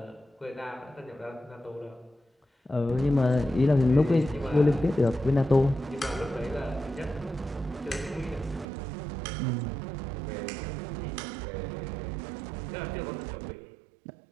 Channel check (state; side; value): drops out; left; at 8.7 s